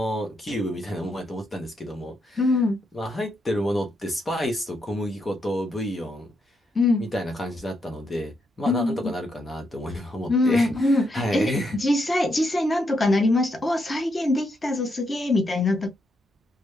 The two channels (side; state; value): both; normal; correlation 0.79